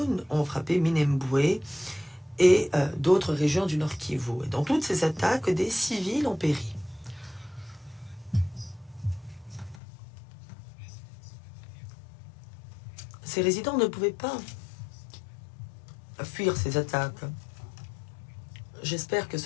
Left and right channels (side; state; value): right; drops out; at 9.8 s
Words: ont frappé Minembwe et d'autres régions du Nord Kivu. Et dans toutes ces attaques, des civils ont péri. Ces résidents ne pouvaient pas fuir ces attaques. J'espère que